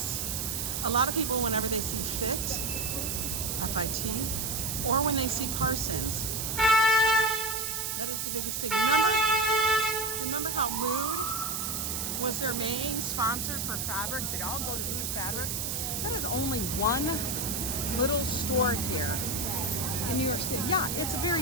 A lot of people, whenever they see FIT, F-I-T, or when they see Parsons, that is the biggest thing. Remember how Mood was their main sponsor for fabrics? They'd all go to Mood Fabrics. That is only one little store here in New York City. Yeah, it's a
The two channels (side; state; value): right; noise; hiss, 2 dB below the sound